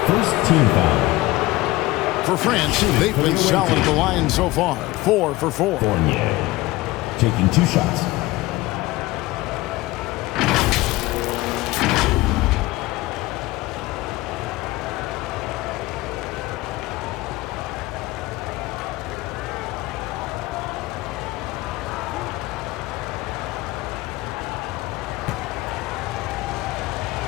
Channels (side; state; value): right; quieter; 19.5 dB